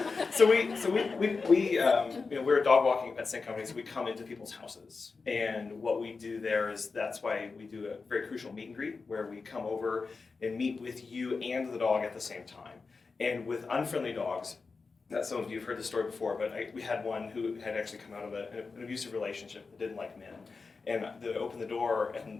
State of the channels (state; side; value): quieter; right; 4.5 dB